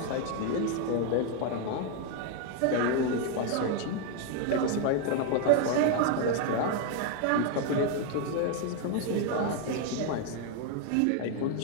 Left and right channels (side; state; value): both; different; correlation 0.01